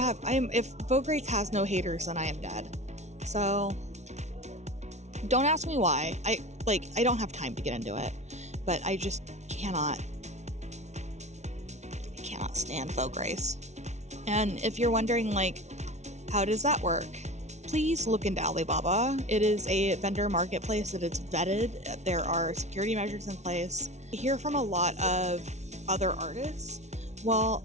Vogue Race has no haters, then I am dead. So don't ask me why. I don't have time to get into it, but I just cannot stand Vogue Race. And if you're wondering like, how does that work? Please look into Alibaba. It is a vendor marketplace that is vetted. There are security measures in place. I hear from a lot of other artists, well,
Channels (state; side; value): late; left; 0.32 ms